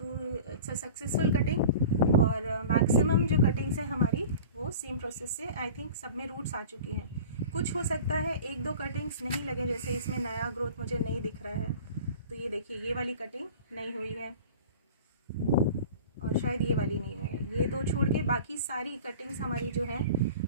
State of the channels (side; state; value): both; inverted; correlation -0.39